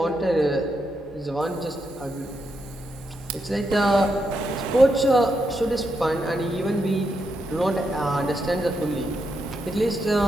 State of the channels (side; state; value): both; normal; correlation 0.82